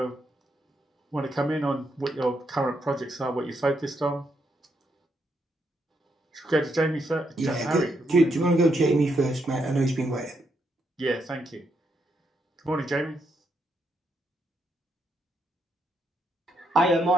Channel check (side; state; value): both; normal; correlation 0.79